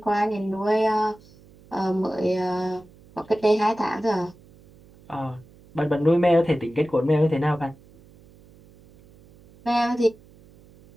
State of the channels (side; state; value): right; noise; hum, 26 dB below the sound